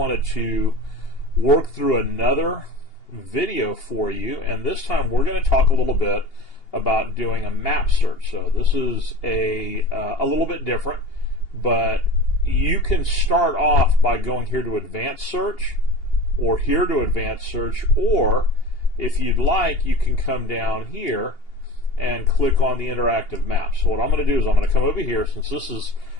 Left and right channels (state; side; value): late; right; 2.8 ms